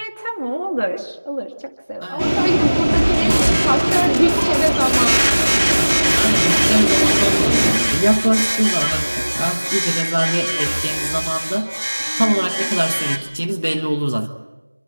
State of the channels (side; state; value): both; inverted; correlation -1.00